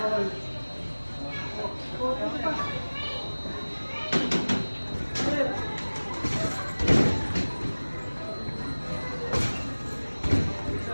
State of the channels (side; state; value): both; inverted; correlation -1.00